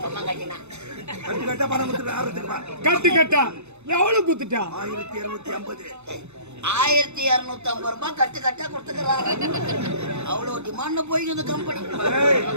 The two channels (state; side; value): late; left; 0.81 ms